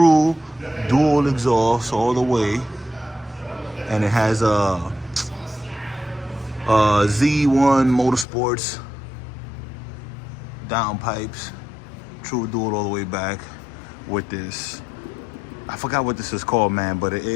dual exhaust all the way, and it has a Z1 Motorsports downpipes, true dual all the way back with this. I forgot what this is called, man, but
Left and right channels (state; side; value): drops out; right; at 8.2 s